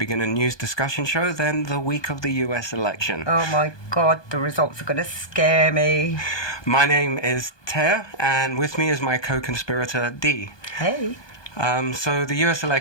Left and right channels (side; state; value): right; late; 1.2 ms